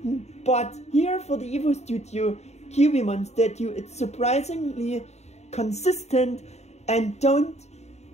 but here for the Evo Studio Kyubimon statue, it's surprisingly consistent, and don't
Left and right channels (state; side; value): late; right; 0.32 ms